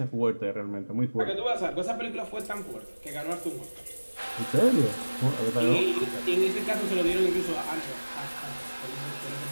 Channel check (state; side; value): inverted; both; correlation -1.00